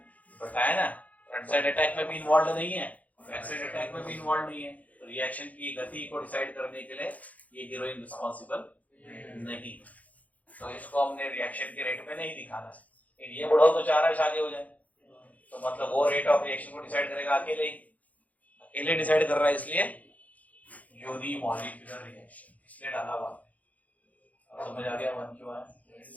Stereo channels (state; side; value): late; right; 0.074 ms